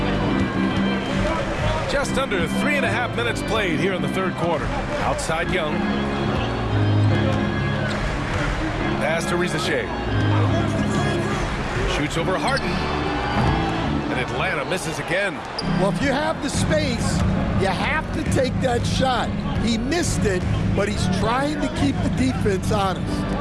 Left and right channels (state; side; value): identical; both; correlation 1.00